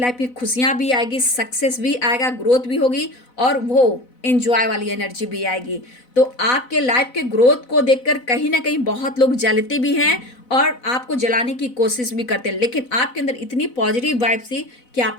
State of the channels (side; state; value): right; late; 4.0 ms